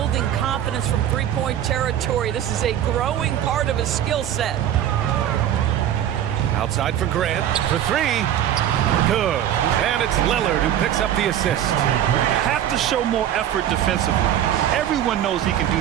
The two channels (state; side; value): quieter; left; 10.8 dB